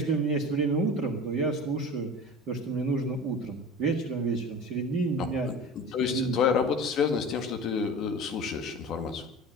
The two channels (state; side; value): normal; both; correlation 0.35